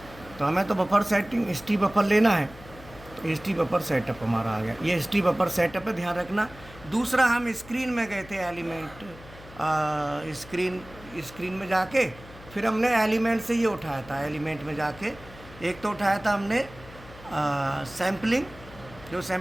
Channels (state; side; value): noise; left; hum, 19 dB below the sound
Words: तो हमें तो बफर सेटिंग हिस्ट्री बफर लेना है, तो हिस्ट्री बफर सेटअप हमारा आ गया। ये हिस्ट्री बफर सेटअप है, ध्यान रखना। दूसरा हम स्क्रीन में गए थे, एलिमेंट स्क्रीन में जाके फिर हमने एलिमेंट से ये उठाया था। एलिमेंट में जाके एक तो उठाया था हमने सैम्पलिंग, जो